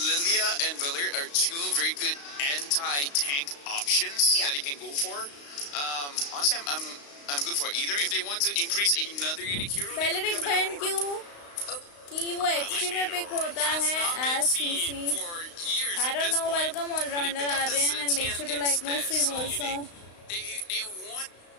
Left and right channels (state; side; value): late; right; 35 ms